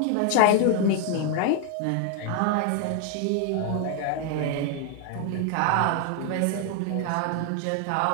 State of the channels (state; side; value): different; both; correlation 0.00